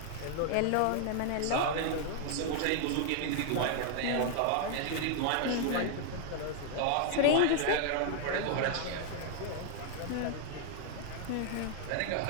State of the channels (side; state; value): both; different; correlation 0.00